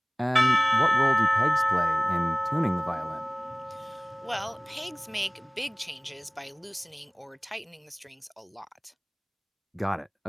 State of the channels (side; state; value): both; identical; correlation 1.00